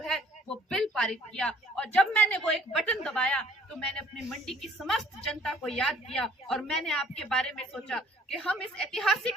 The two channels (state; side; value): normal; both; correlation 0.57